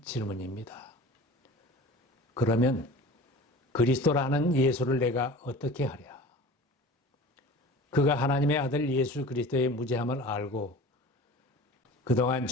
질문입니다. 그러면 그리스도라는 예수를 내가 어떻게 하랴? 그가 하나님의 아들 예수 그리스도의 무죄함을 알고 그동안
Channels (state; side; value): normal; both; correlation 0.39